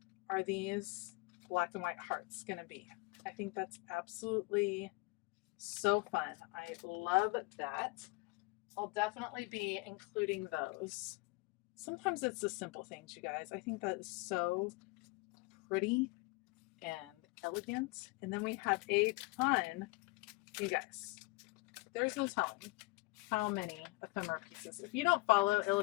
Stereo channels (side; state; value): right; quieter; 25.9 dB